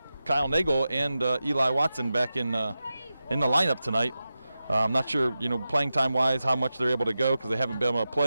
Kyle Nagel and Eli Watson back in the lineup tonight. I'm not sure, playing time-wise, how much they're able to go because they haven't been able to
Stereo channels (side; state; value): both; inverted; correlation -0.92